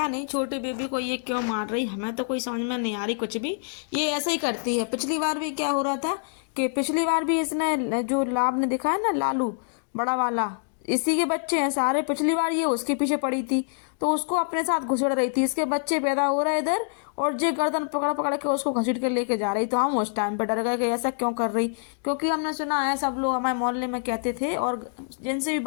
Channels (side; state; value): right; silent; digital silence